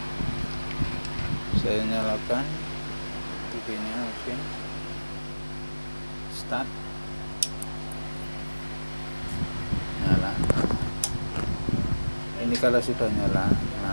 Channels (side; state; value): both; inverted; correlation -1.00